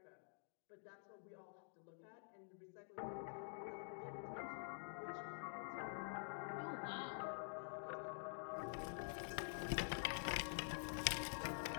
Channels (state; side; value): silent; right; digital silence